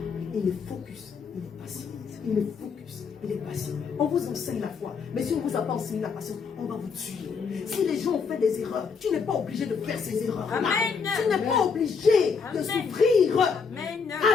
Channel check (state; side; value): quieter; right; 5.6 dB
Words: Il est focus. Il est patient. Il est focus. Il est patient. On vous enseigne la foi. Mais si on ne vous a pas enseigné la patience, on va vous tuer. Si les gens ont fait des erreurs, tu n'es pas obligé de faire ces erreurs. Amen. Tu n'es pas obligé de Amen. souffrir. Amen.